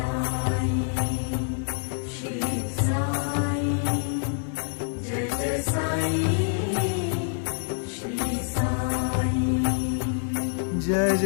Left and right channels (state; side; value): silent; right; 61 dB below the other